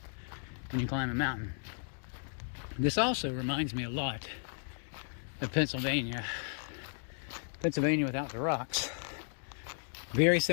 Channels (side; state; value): right; silent; digital silence